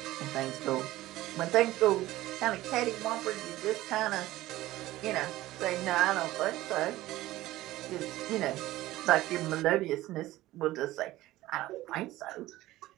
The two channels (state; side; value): quieter; left; 16.5 dB